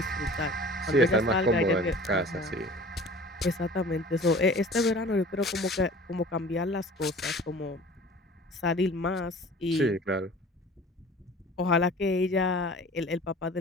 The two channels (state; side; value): normal; both; correlation 0.44